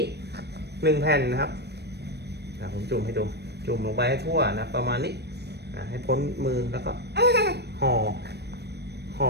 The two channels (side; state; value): left; late; 0.48 ms